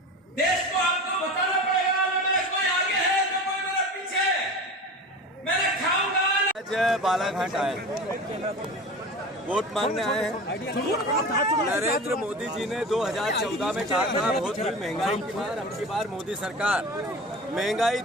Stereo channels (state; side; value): normal; both; correlation 0.33